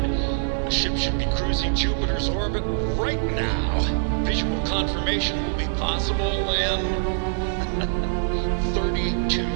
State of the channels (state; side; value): silent; left; digital silence